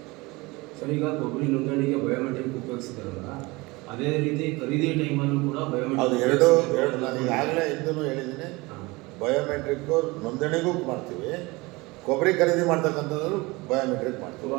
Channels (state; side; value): quieter; left; 23.4 dB